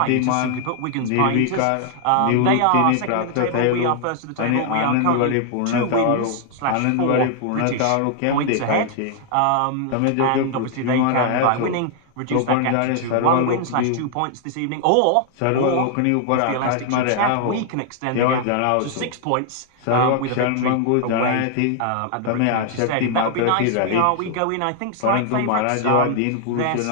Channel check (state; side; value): different; both; correlation 0.00